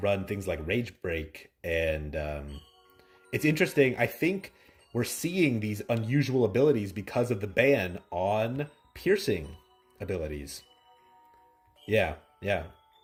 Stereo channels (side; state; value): both; identical; correlation 1.00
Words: run things like Rage Break. And it's interesting. I think we're seeing these unusual abilities because of the ban on piercing abilities. Yeah.